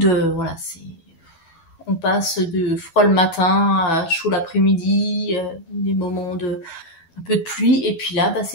Voilà, on passe de froid le matin à chaud l'après-midi, des moments de un peu de pluie, et puis là, bah,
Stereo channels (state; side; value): late; right; 12 ms